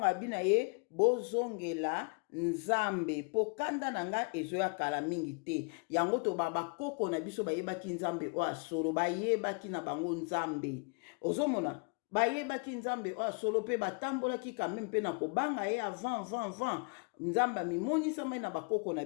abina ye bozongela nzambe pokandana nanga ezoya kala mingi te yango to bakoko na biso bayebaki nzambe o asolo bayebaki na bango nzambe ozomona bayebaki nzambe o asolo pe batambolaki quand même pe na kobanga ye avant nzambe mimonisa mai na bakoko na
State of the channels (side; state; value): right; quieter; 35.7 dB